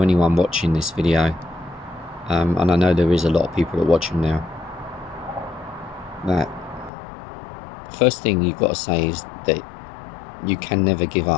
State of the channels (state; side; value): drops out; right; at 6.9 s